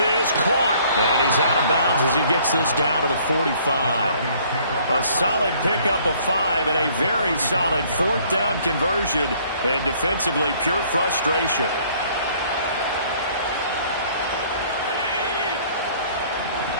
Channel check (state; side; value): inverted; both; correlation -0.59